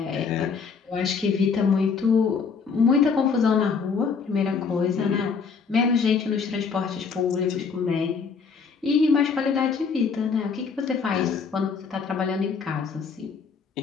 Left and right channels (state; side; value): quieter; right; 5.5 dB